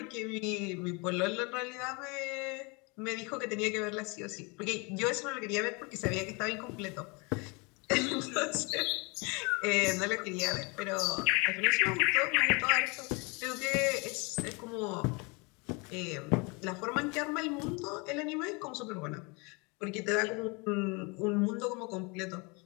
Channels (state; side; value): quieter; right; 29.5 dB